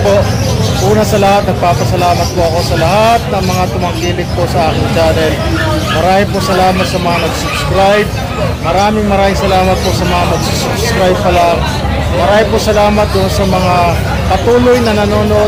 po, una sa lahat, nagpapasalamat po ako sa lahat ng mga tumangkilik po sa aking channel. Maraming po salamat sa mga nag-subscribe. Maraming salamat po sa mga mag-subscribe pa lang. Maraming po salamat doon sa mga patuloy na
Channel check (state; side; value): identical; both; correlation 1.00